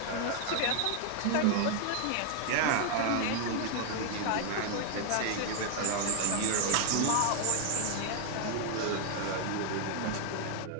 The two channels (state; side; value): different; both; correlation 0.00